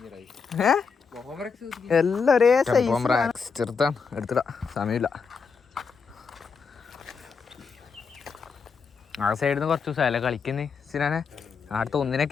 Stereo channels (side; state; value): right; quieter; 5.5 dB